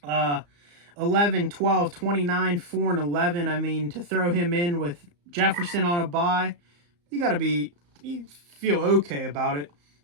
11, 12, 29, 4, and 11. I mean, to throw him in with Jefferson on a bye, you feel okay about it.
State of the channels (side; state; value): left; late; 34 ms